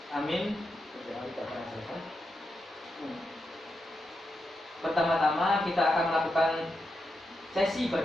Amin. Pertama-tama kita akan melakukan sesi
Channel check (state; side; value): normal; both; correlation 0.86